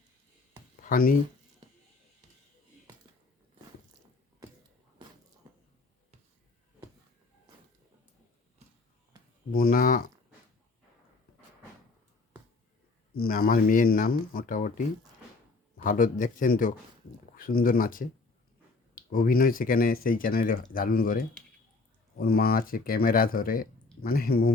ফানি মুনা আমার মেয়ের নাম। মোটামুটি ভালো, দেখছেন তো, খুব সুন্দর নাচে। অভিনয় সেখানে সেই চ্যানেলে দারুণ করে। ওর মা আছে ক্যামেরা ধরে, মানে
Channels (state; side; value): quieter; right; 3.8 dB